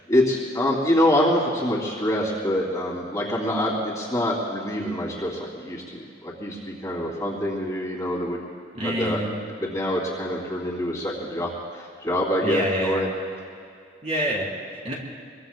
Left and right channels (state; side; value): normal; both; correlation 0.60